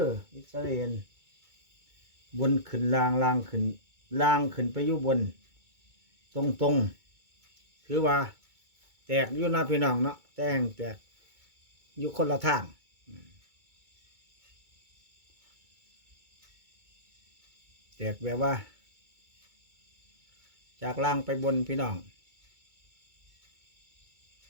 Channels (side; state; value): left; late; 2.2 ms